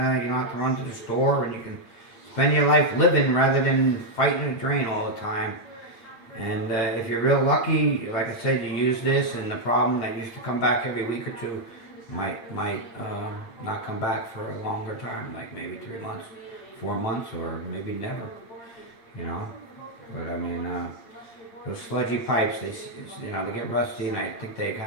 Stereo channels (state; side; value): late; right; 8.8 ms